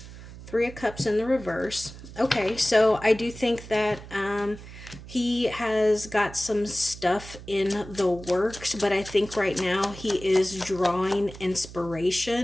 Three of Cups in the reverse. Okay, so I do think that he has got some stuff in the works, but I think right now he is drawing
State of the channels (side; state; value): right; noise; hum, 15 dB below the sound